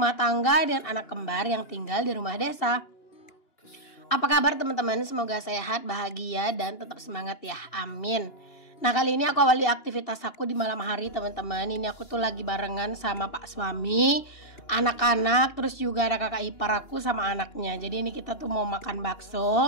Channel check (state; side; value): late; right; 2.9 ms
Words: tangga dan anak kembar yang tinggal di rumah desa. Apa kabar teman-teman? Semoga sehat, bahagia dan tetap semangat ya. Amin. Nah, kali ini aku awali aktivitas aku di malam hari teman-teman. Ini aku tuh lagi barengan sama pak suami, anak-anak, terus juga ada kakak ipar aku sama anaknya. Jadi ini kita tuh mau makan